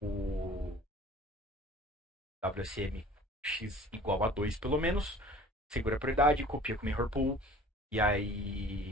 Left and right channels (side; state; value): both; normal; correlation 0.47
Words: WSM X igual a 2 pelo menos, segura a prioridade, copia com Mirror Pool, e